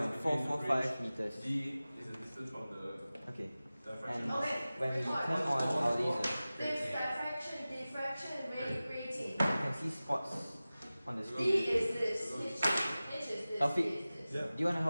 meters. D is the distance from the Okay. And when we turn on our laser, you can see spots on the screen. Taufik, do you want to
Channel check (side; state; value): both; inverted; correlation -0.97